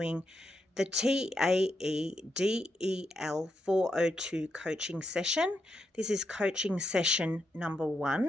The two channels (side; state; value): both; normal; correlation 0.83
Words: the TAEDEL402 coaching session. This is coaching session number